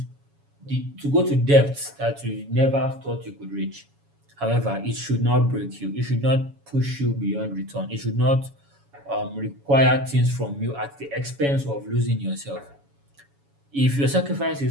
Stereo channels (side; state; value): left; late; 7.1 ms